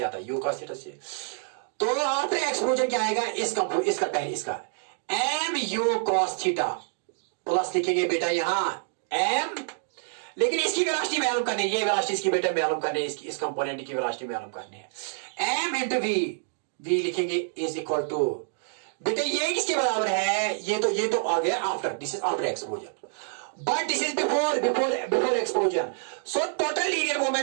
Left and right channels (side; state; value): left; silent; digital silence